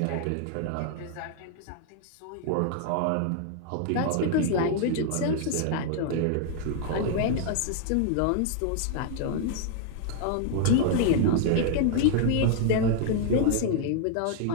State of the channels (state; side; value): different; both; correlation 0.00